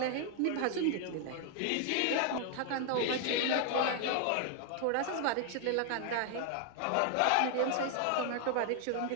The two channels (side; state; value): both; different; correlation 0.00